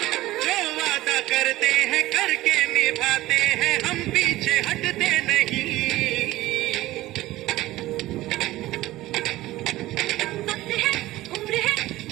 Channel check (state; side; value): quieter; left; 16.9 dB